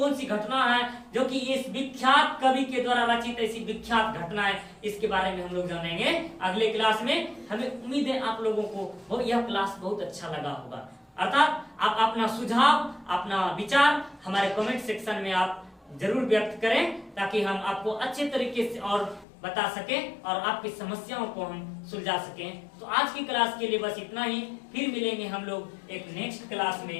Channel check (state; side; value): drops out; right; at 19.2 s